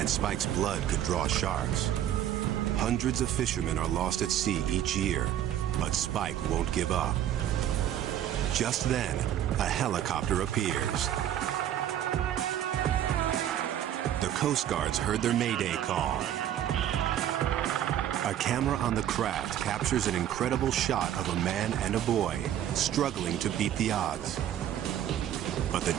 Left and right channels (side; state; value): left; quieter; 11.1 dB